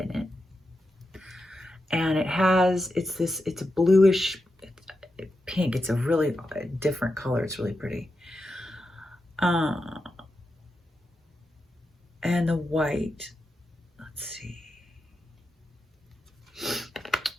it. And it's a bluish pink. It's a really different color. It's really pretty. And the white, let's see.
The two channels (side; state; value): both; normal; correlation 0.88